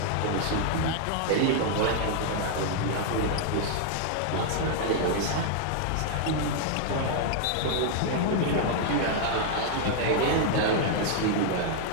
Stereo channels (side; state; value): both; different; correlation 0.00